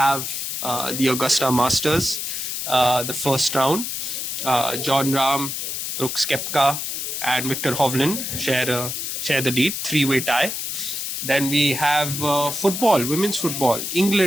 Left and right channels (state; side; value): noise; left; hiss, 4 dB below the sound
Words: the Augusta Masters, the first round. John Rahm, Brooks Koepka, and Victor Hovland share the lead, three-way tie. Then we have football, women's football.